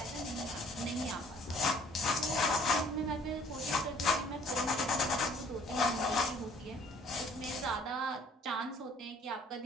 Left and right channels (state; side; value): normal; both; correlation 0.57